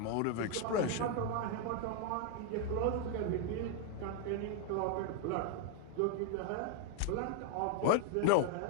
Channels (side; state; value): both; different; correlation 0.00